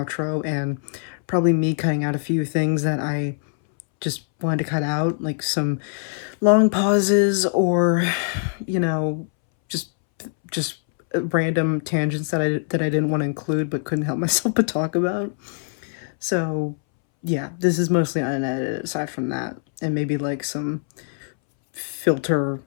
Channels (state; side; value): silent; right; 63 dB below the other